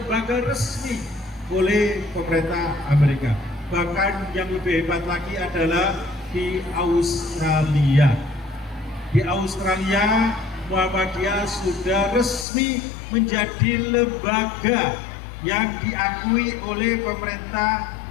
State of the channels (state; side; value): drops out; right; at 12.5 s